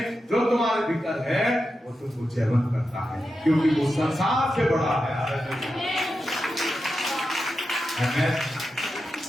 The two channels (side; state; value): both; normal; correlation 0.89